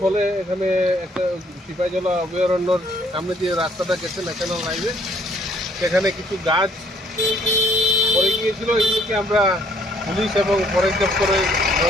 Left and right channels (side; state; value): both; normal; correlation 0.63